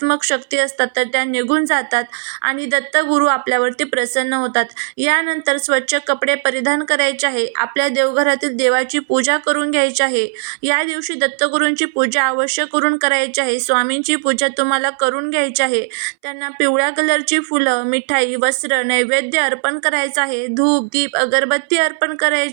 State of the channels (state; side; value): silent; left; 64 dB below the other